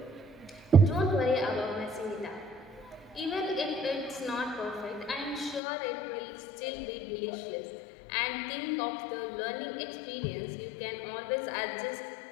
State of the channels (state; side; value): drops out; right; at 5.6 s